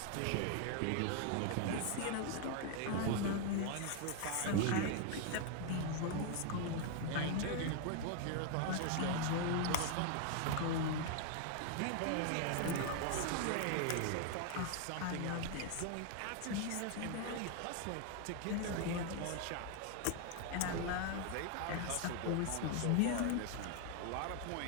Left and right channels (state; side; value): different; both; correlation 0.00